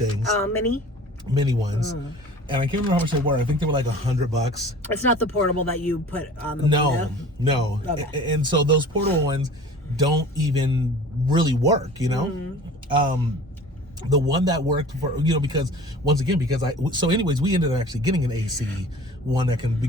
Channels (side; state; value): both; normal; correlation 0.43